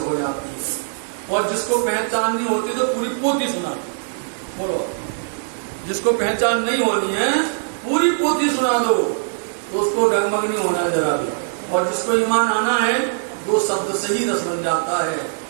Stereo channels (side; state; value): left; silent; 64 dB below the other